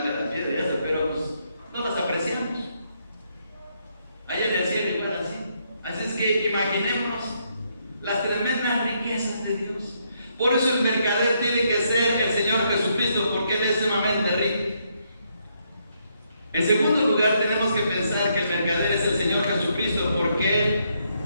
la piedra y eso, pero pues no las apreciamos. Allá en el cielo igual así. Así es que imaginémonos las tremendas riquezas de Dios. Por eso el mercader tiene que ser el Señor Jesucristo, porque Él es sumamente rico. En segundo lugar, tenemos que pensar que el mercader es el Señor Jesucristo, porque Él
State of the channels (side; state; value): both; inverted; correlation -0.75